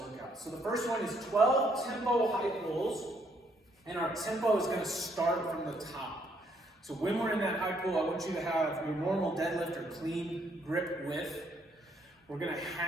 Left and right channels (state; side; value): normal; both; correlation 0.70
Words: So the first one is 12 tempo high pulls. And our tempo is going to start from the top. So when we're in that high pull, I want you to have your normal deadlift or clean grip width. We're going to